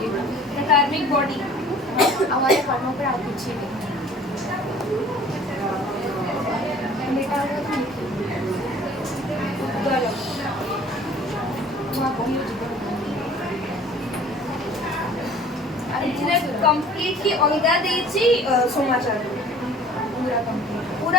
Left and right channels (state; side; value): normal; both; correlation 0.50